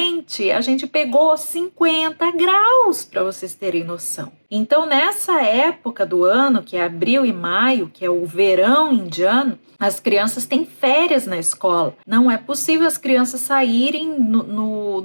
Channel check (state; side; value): inverted; both; correlation -1.00